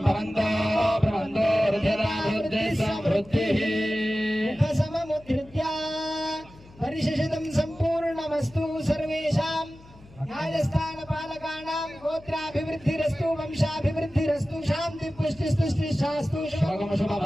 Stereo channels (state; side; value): noise; left; hum, 23 dB below the sound